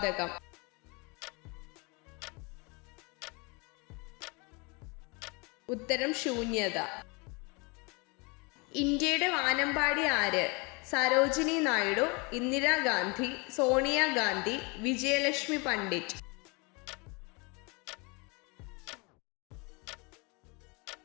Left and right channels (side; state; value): right; quieter; 29.5 dB